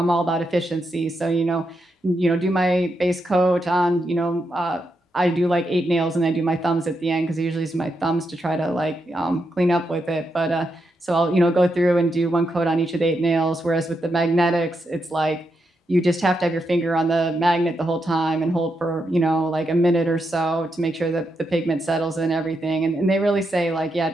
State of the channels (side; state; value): both; normal; correlation 0.83